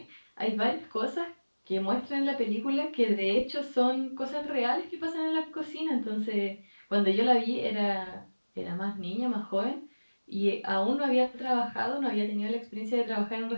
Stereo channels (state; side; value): inverted; both; correlation -1.00